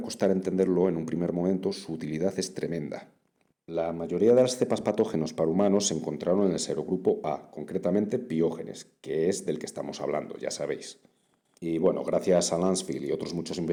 costar entenderlo en un primer momento, su utilidad es tremenda. La mayoría de las cepas patógenos para humanos se encontraron en el serogrupo A, concretamente Piógenes, que es del que estamos hablando, ya sabéis. Y bueno, gracias a Lansfield y otros muchos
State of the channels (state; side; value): identical; both; correlation 1.00